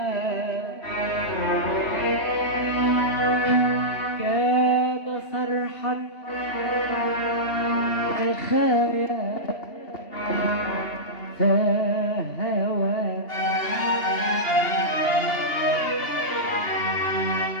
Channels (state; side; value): late; right; 2.8 ms